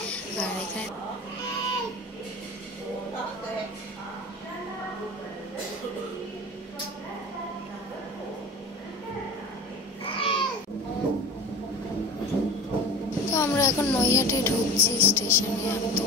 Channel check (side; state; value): both; normal; correlation 0.35